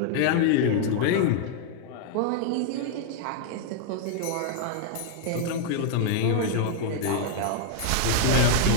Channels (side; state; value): both; different; correlation 0.00